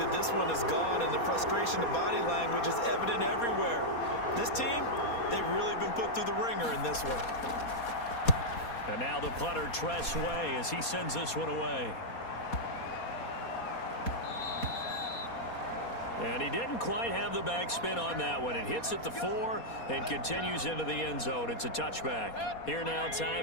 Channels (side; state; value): right; late; 4.2 ms